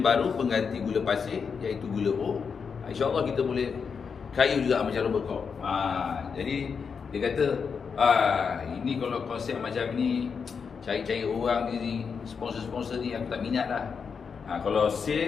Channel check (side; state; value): right; quieter; 6.0 dB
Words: pengganti gula pasir iaitu gula O. InsyaAllah kita boleh kaya juga macam Robert Koch. Jadi dia kata ini kalau konsep macam ni, cari-cari orang ni, sponsor-sponsor ni aku tak minat lah. Kalau